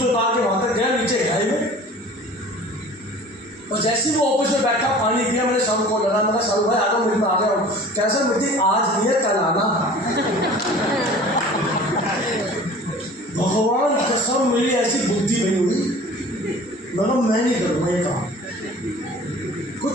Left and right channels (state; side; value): normal; both; correlation 0.44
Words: उतार के वहां तक गया, नीचे गहराई में। और जैसे ही वो ऑफिस में बैठा, पानी पिया, मैंने शाहरुख को लगा, मैंने शाहरुख भाई आ जाओ मीटिंग में, आ गया हूँ। कैसा मीटिंग आज नहीं है, कल आना। भगवान कसम मेरी ऐसी बुद्धि नहीं हुई, मैं नहीं करूँगा ये काम। कोई